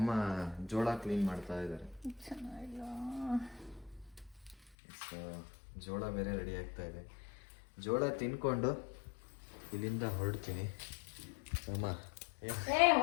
ಜೋಳ ಕ್ಲೀನ್ ಮಾಡ್ತಾ ಇದ್ದಾರೆ. ಜೋಳ ಬೇರೆ ರೆಡಿ ಆಗ್ತಾ ಇದೆ. ಜೋಳ ತಿನ್ಕೊಂಡು ಇಲ್ಲಿಂದ ಹೊರಡ್ತೀನಿ. ಅಮ್ಮ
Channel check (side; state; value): right; drops out; at 4.7 s